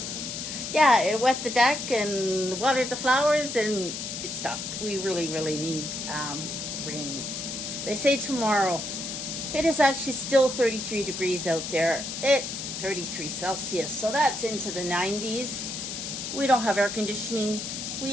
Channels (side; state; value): left; noise; hiss, 6 dB below the sound